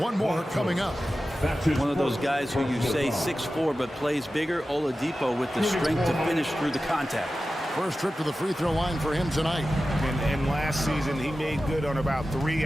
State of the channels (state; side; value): normal; both; correlation 0.94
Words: more coming up. One of those guys who you say 6'4", but plays bigger. Oladipo with the strength to finish through the contact. First trip to the free throw line for him tonight. And last season, he made good on about 3